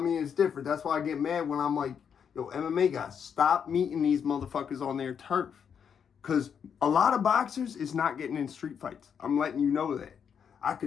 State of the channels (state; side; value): quieter; right; 7.4 dB